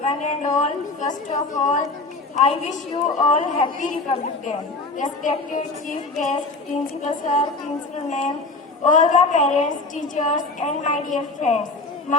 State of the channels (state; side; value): quieter; right; 3.5 dB